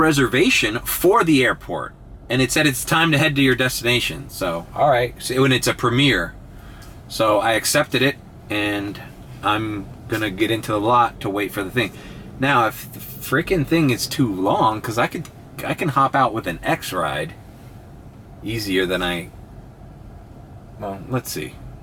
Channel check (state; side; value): identical; both; correlation 1.00